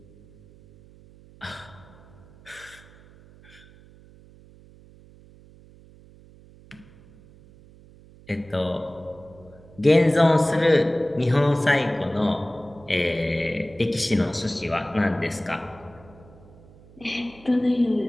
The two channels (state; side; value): noise; right; hum, 24 dB below the sound